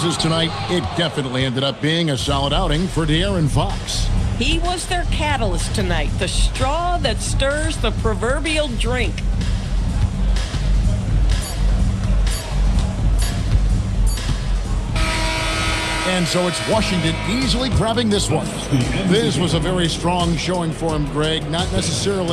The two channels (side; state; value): both; identical; correlation 1.00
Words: tonight, it definitely ended up being a solid outing for De'Aaron Fox. He was their catalyst tonight, the straw that stirs the proverbial drink. And so it's Washington easily grabbing this one. This was a very strong showing for him, Greg. Not